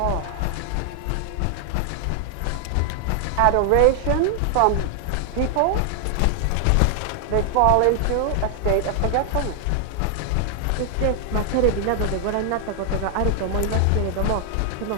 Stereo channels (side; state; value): both; different; correlation 0.00